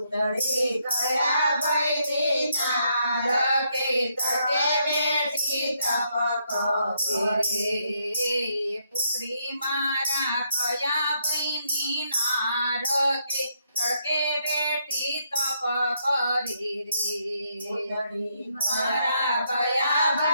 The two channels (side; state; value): both; inverted; correlation -0.75